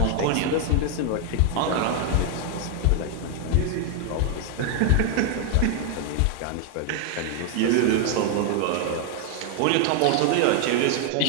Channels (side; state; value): both; different; correlation 0.01